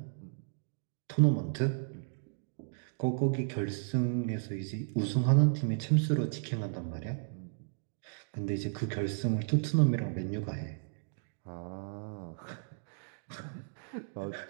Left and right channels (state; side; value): silent; left; digital silence